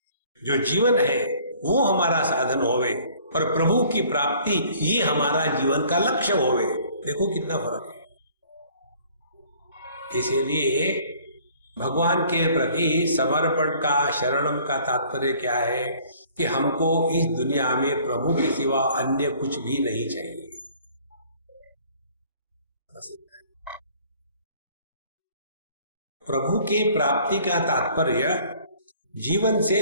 जो जीवन है वो हमारा साधन होवे और प्रभु की प्राप्ति ये हमारा जीवन का लक्ष्य होवे। देखो कितना फर्क है। इसीलिए भगवान के प्रति समर्पण का, शरणम का तात्पर्य क्या है कि हमको इस दुनिया में प्रभु के सिवा अन्य कुछ भी नहीं चाहिए। प्रभु के प्राप्ति का तात्पर्य जीवन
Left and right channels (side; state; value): both; inverted; correlation -0.55